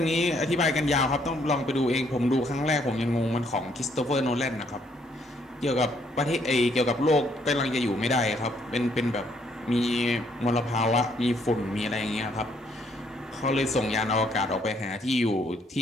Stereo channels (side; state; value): both; normal; correlation 0.69